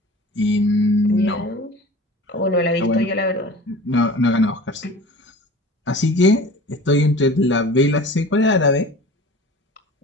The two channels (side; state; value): both; normal; correlation 0.40